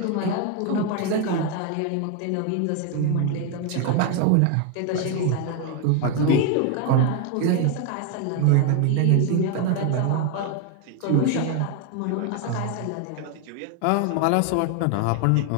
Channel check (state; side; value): different; both; correlation 0.01